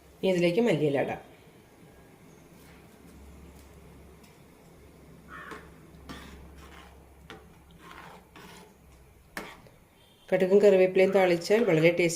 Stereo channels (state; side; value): identical; both; correlation 1.00